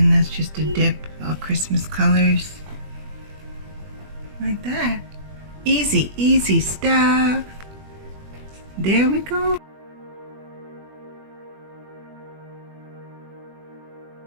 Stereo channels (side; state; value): left; late; 21 ms